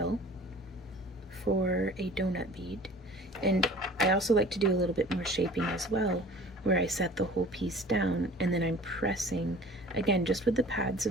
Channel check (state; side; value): normal; both; correlation 0.45